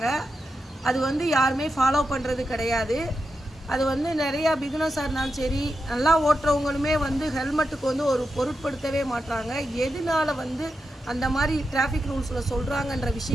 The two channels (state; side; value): normal; both; correlation 0.88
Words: அது யாருமே ஃபாலோ பண்ணுறது கிடையாது. அது நிறையா பிகினர்ஸாக இருந்தாலும் சரி, நல்லா ஓட்டுறவங்களுமே ஹெல்மெட்டுக்கு ஒரு பொருட்படுத்தவே மாட்டாங்க. எதனால அந்த மாதிரி டிராஃபிக் ரூல்ஸில் சொல்கிறாங்கன்ற